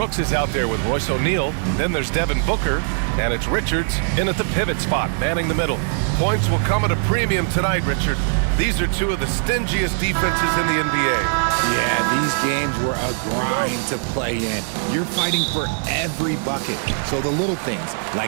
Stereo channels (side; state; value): left; silent; digital silence